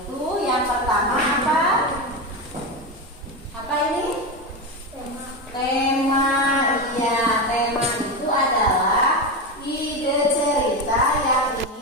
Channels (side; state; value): both; normal; correlation 0.16